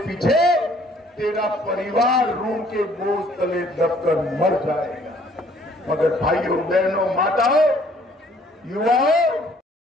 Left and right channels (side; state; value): both; normal; correlation 0.60